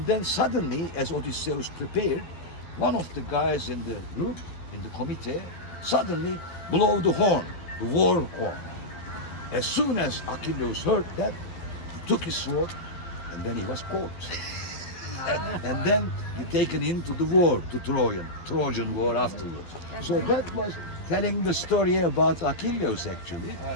then suddenly, as Odysseus prepared, one of the guys in the group, in the committee, suddenly blew the horn, the war horn. As soon as Achilles heard that, he took his sword, and then he was caught. and then he taken into the war, to Trojan War afterwards. So that was telling the story about Achilles actually,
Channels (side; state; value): right; late; 12 ms